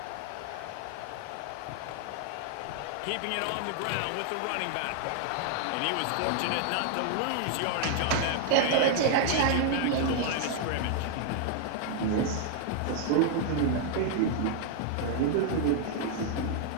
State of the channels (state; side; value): different; both; correlation 0.00